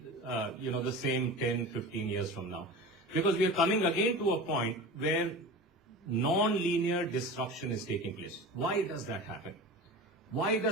the same 10, 15 years from now. Because we are coming again to a point where non-linear disruption is taking place. Why does that happen? Why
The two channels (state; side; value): normal; both; correlation 0.33